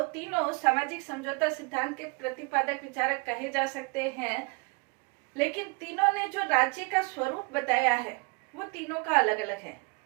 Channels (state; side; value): quieter; left; 30.9 dB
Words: तीनों सामाजिक समझौता सिद्धांत के प्रतिपादक विचारक कहे जा सकते हैं, लेकिन तीनों ने जो राज्य का स्वरूप बताया है वो तीनों का अलग अलग है।